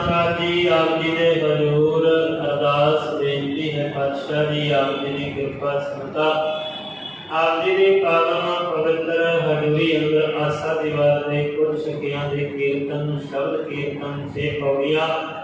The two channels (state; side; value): identical; both; correlation 1.00